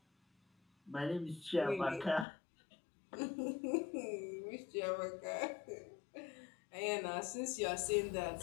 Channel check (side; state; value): right; drops out; at 2.2 s